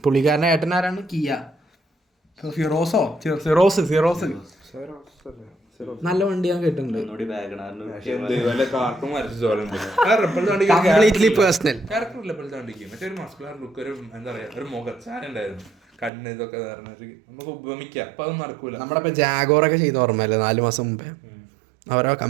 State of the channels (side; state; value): left; drops out; at 16.1 s